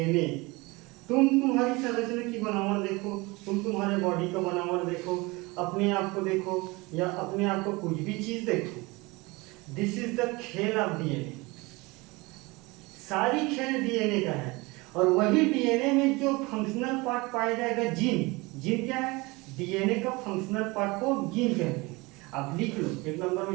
तुम तुम्हारी संरचना की बनावट देखो, तुम तुम्हारे बॉडी का बनावट देखो, अपने आप को देखो या अपने आप को कुछ भी चीज देखो, दिस इज द खेल ऑफ डीएनए। सारी खेल डीएनए का है। और वही डीएनए में जो फंक्शनल पार्ट पाया जाएगा, जीन क्या है, डीएनए का फंक्शनल पार्ट को जीन कहते हैं। आप लिख लो, 1 नंबर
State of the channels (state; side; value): quieter; left; 24.1 dB